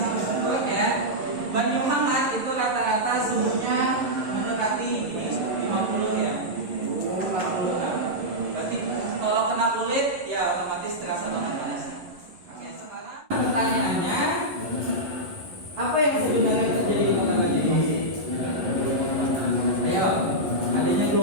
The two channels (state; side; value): late; left; 11 ms